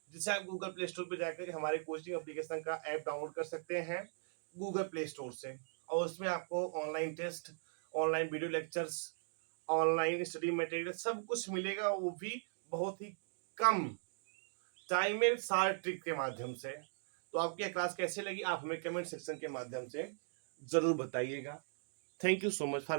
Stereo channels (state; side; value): silent; left; digital silence